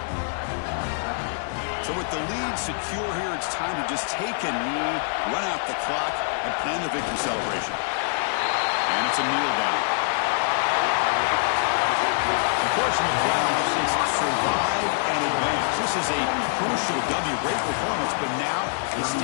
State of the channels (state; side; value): silent; right; digital silence